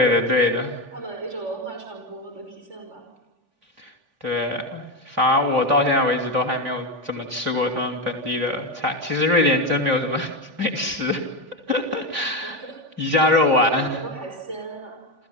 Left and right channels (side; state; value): left; late; 3.5 ms